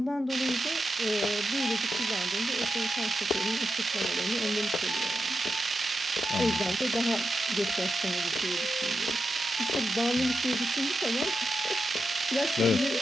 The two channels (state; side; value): normal; both; correlation 0.88